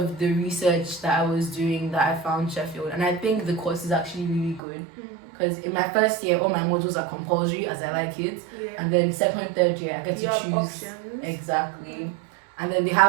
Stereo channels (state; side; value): drops out; left; at 4.6 s